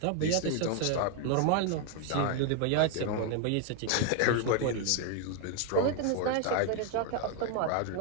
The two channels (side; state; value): both; different; correlation 0.00